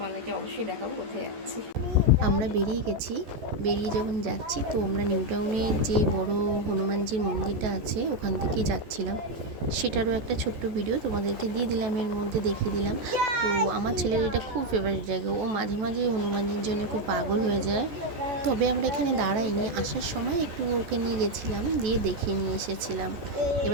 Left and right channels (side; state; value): left; late; 14 ms